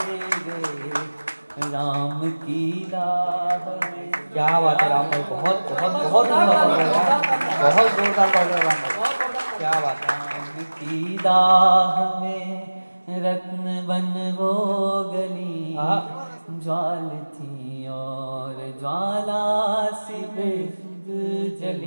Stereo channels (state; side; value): inverted; both; correlation -1.00